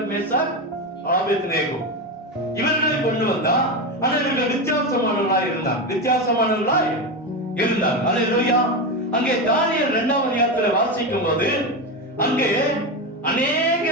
மேசாக், ஆபேத்நேகோ. இவர்களை கொண்டு வந்தா. ஆனா இவர்கள் வித்தியாசமானவர்களாய் இருந்தார். அல்லேலூயா. அங்கே தானியேல் 2ஆம் அதிகாரத்துல வாசிக்கும் போது அங்கே அநேக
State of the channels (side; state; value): both; normal; correlation 0.15